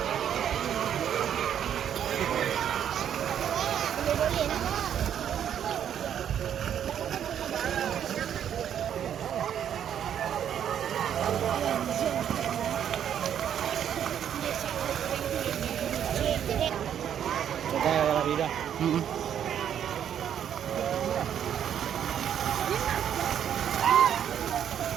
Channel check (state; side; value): quieter; left; 9.4 dB